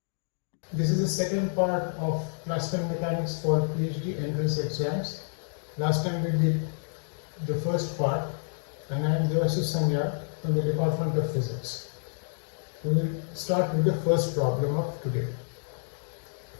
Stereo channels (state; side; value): silent; right; digital silence